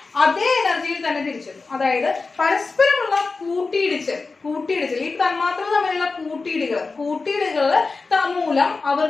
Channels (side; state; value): right; quieter; 4.1 dB